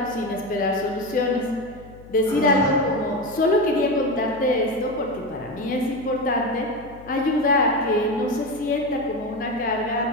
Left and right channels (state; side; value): noise; left; hum, 20 dB below the sound